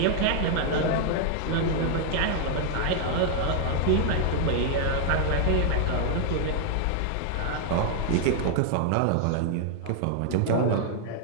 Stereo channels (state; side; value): different; both; correlation 0.00